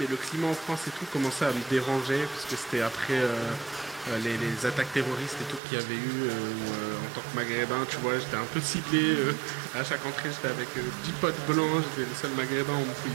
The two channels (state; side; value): drops out; left; at 5.6 s